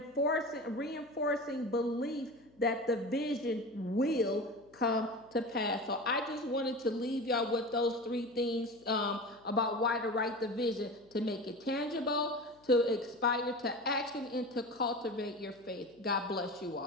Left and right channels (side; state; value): left; noise; hum, 30 dB below the sound